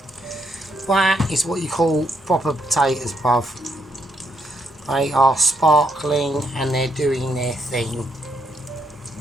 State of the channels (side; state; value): both; normal; correlation 0.75